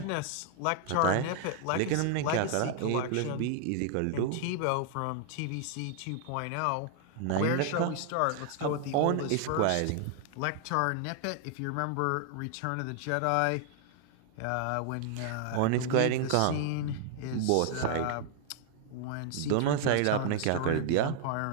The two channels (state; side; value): different; both; correlation 0.00